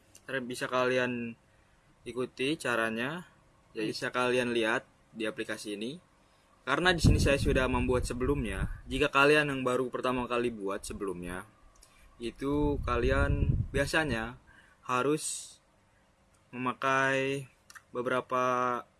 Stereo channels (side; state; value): both; identical; correlation 1.00